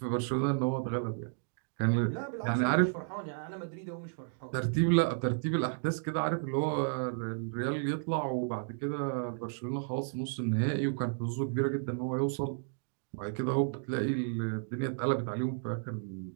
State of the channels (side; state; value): left; silent; digital silence